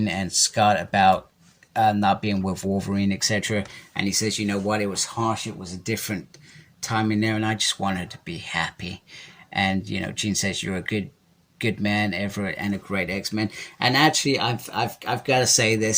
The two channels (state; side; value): identical; both; correlation 1.00